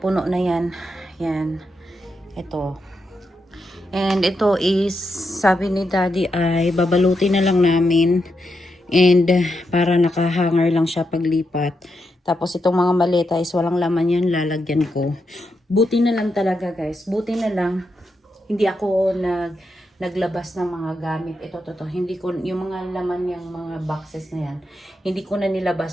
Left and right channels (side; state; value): both; normal; correlation 0.84